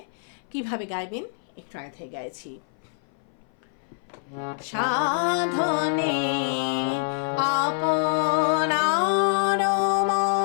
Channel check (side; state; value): right; silent; 57 dB below the other